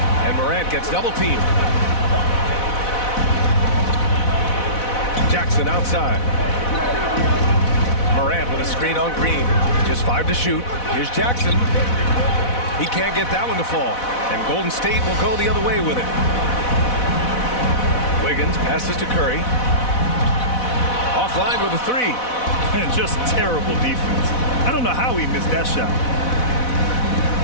And Morant gets double teamed. Jackson outside. Morant with a screen on Green. Just 5 to shoot. Here's Jackson. He can't get that one to fall. And Golden State will go the other way with it. Wiggins passes to Curry. Offline with a three. And just terrible defense. I don't know how he missed that shot.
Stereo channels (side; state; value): right; late; 4.1 ms